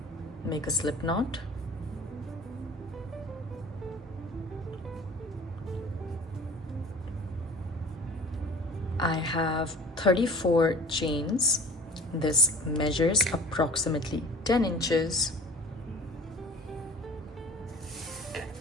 Make a slip knot. I have 34 chains. This measures approximately 10 inches.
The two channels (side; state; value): both; normal; correlation 0.44